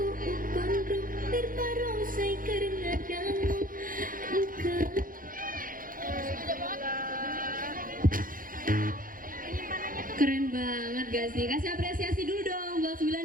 gak sih? Kasih apresiasi dulu dong buat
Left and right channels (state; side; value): late; left; 0.40 ms